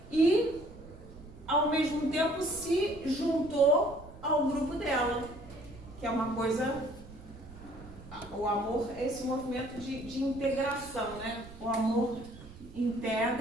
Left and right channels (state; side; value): noise; right; rumble, 17 dB below the sound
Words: E, ao mesmo tempo, se juntou ao grupo dela, que é uma coisa... O amor é esse movimento de integração, né? O amor